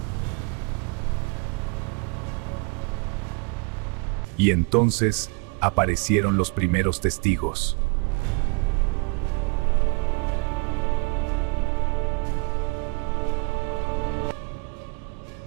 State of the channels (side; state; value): left; quieter; 32.4 dB